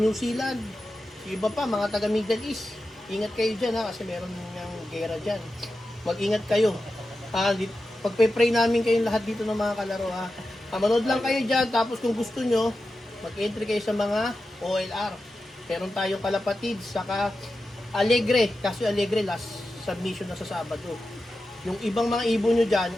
Zealand. Iba pa, mga taga-Middle East. Ingat kayo dyan, ha? Kasi meron ng gera dyan. Mag-ingat kayo. Pagpe-pray namin kayong lahat dito ng mga kalaro, ha. Manood lang kayo dyan, tapos kung gusto nyo, mag-entry kayo sa mga OLR. Meron tayong Kalapatid, saka Alegre. Kasi Alegre, last submission na sa Sabado. Yung ibang mga ibon nyo dyan,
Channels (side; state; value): both; normal; correlation 0.91